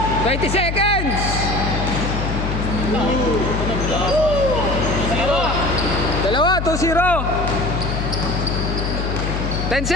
20 seconds! Dalawa, 2-0. 10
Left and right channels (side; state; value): left; noise; hum, 2 dB below the sound